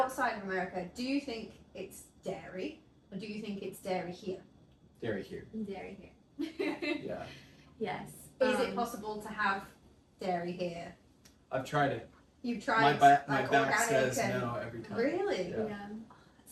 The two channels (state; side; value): identical; both; correlation 1.00